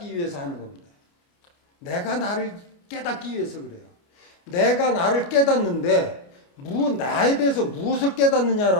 위해서 하는 겁니다. 내가 나를 깨닫기 위해서 그래요. 내가 나를 깨닫는데 나에 대해서 무엇을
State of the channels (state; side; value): late; right; 29 ms